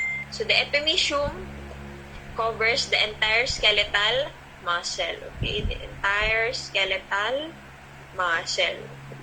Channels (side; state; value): both; identical; correlation 1.00